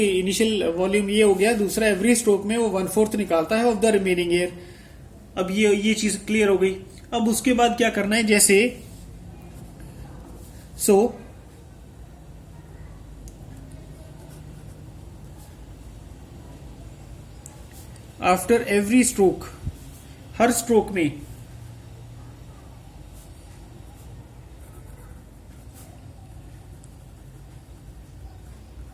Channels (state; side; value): identical; both; correlation 1.00